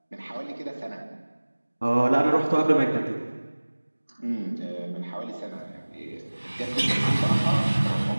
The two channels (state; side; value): inverted; both; correlation -1.00